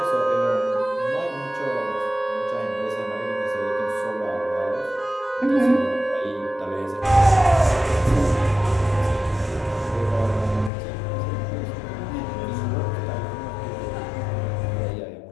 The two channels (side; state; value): right; drops out; at 10.7 s